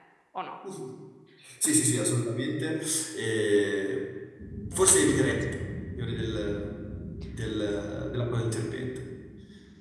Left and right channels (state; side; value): identical; both; correlation 1.00